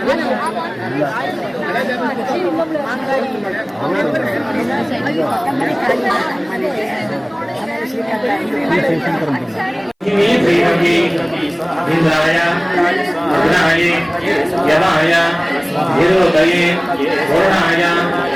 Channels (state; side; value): identical; both; correlation 1.00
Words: इंद्राय अग्नाय यमाय निरोधये वरुणाय